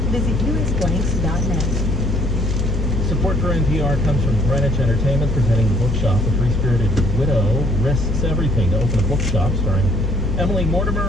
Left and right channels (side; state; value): both; normal; correlation 0.62